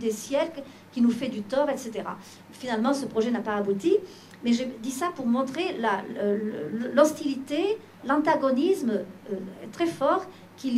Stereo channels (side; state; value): both; identical; correlation 1.00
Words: siècles, qui nous fait du tort, etc. Finalement, ce projet n'a pas abouti, mais j'ai dit ça pour montrer l'hostilité, l'antagonisme très fort qu'il